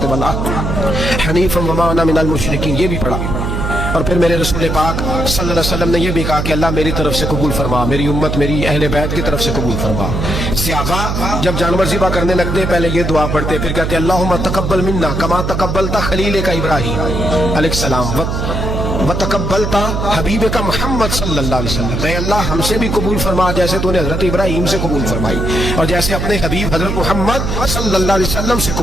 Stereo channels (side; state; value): right; noise; hum, 2 dB below the sound